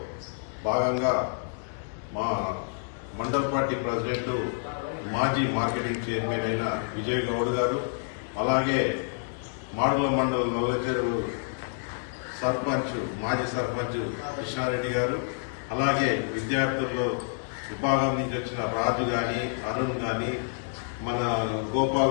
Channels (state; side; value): silent; right; digital silence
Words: భాగంగా మా మండల పార్టీ ప్రెసిడెంట్ మాజీ మార్కెటింగ్ చైర్మన్ అయిన విజయ్ గౌడ్ గారు, అలాగే మాడుగుల మండలం నల్లచెరువు సర్పంచ్ మాజీ సర్పంచ్ కృష్ణారెడ్డి గారు, అలాగే విద్యార్థుల్లో విభాగం నుంచి వచ్చిన రాజు గాని, అరుణ్ గాని, మన